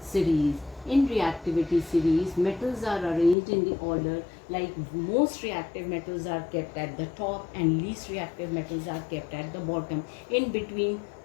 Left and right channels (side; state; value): right; drops out; at 3.4 s